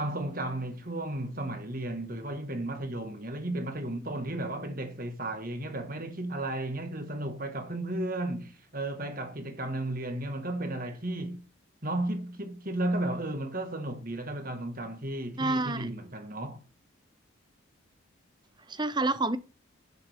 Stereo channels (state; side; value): normal; both; correlation 0.53